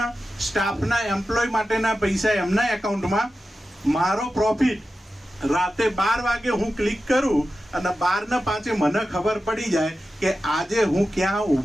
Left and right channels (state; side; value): normal; both; correlation 0.92